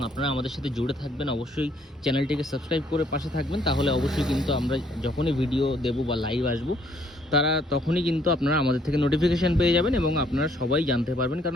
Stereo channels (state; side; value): normal; both; correlation 0.65